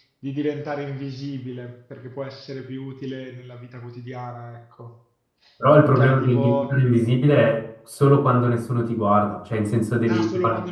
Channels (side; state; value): both; identical; correlation 1.00